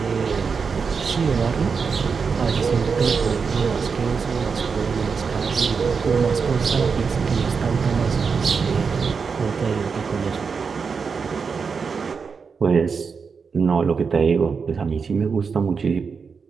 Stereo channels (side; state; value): left; quieter; 5.5 dB